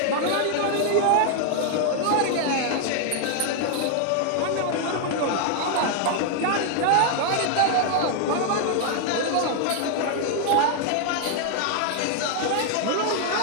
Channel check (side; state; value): both; different; correlation 0.00